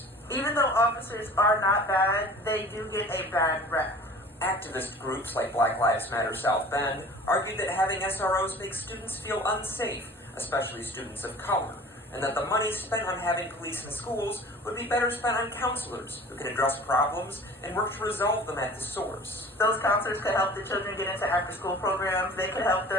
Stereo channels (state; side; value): normal; both; correlation 0.43